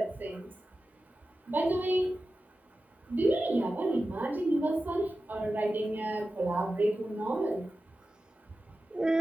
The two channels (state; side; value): normal; both; correlation 0.93